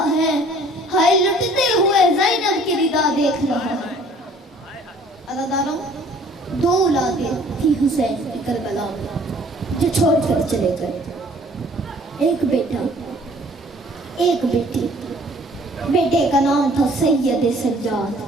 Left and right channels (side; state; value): both; normal; correlation 0.55